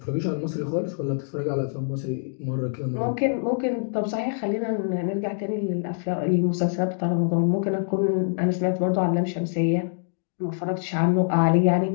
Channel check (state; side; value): silent; right; digital silence